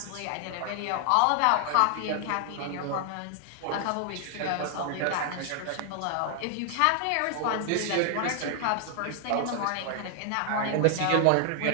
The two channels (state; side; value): different; both; correlation 0.00